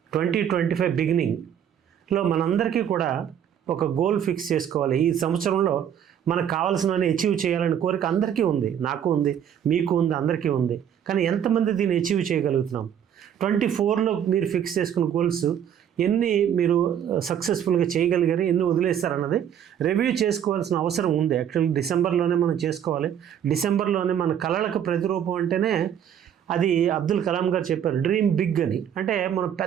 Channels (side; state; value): left; quieter; 9.3 dB